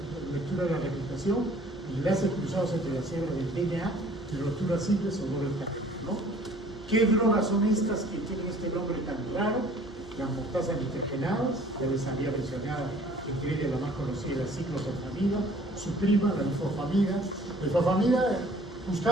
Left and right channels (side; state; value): both; normal; correlation 0.54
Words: lectura de la replicación y enlaces cruzados entre las células del DNA y rupturas simples o doble cadena, ¿no? ¿Qué drogas son estas que tienen este nombre tan raro? Las mostazas nitrogenadas, ya les había mencionado, entre ellas la más conocida, la ciclofosfamida, su prima, la ifosfamida. La ifosfamida,